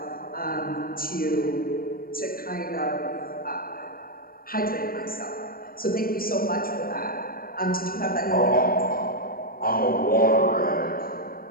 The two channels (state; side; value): late; right; 0.42 ms